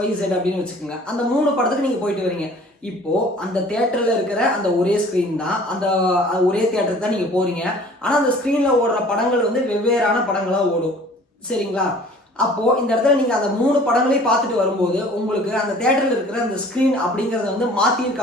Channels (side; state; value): both; normal; correlation 0.50